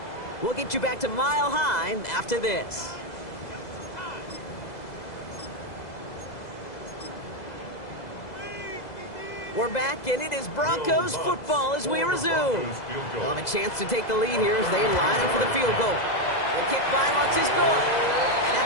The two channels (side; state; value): right; late; 2.0 ms